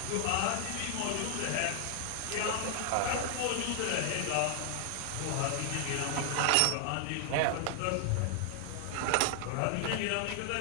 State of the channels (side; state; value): both; different; correlation 0.00